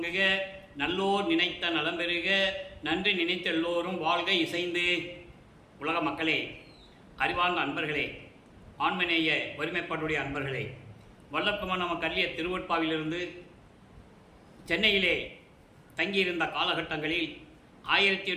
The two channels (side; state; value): both; identical; correlation 1.00